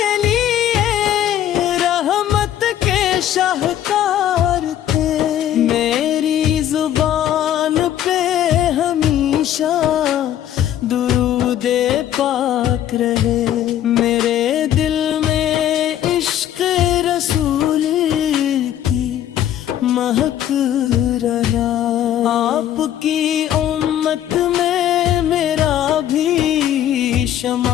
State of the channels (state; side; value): quieter; right; 11.3 dB